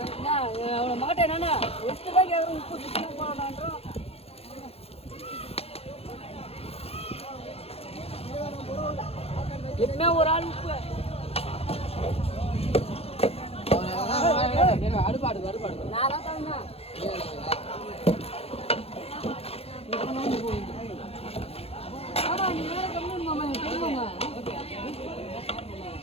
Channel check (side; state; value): right; late; 0.29 ms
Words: அவ்வளோ மாட்டேன் என்னன்னா எட்டு தான் கேட்குறேன். உப்பு சுத்தமாக போடான்றோம். எப்பவுமே ஒரு ஆள் உப்பு அடுப்பாடு நான் தான் தந்தா ஆமா நீ வேற கம்மி மாமா தெரியுமா